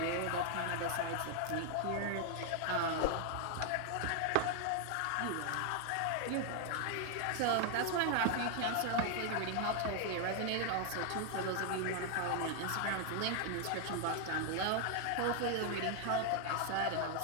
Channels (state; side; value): different; both; correlation 0.00